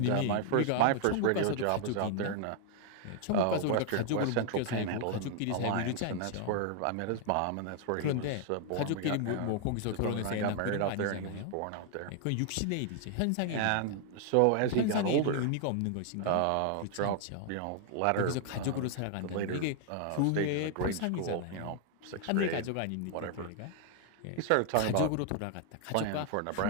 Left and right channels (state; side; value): different; both; correlation 0.00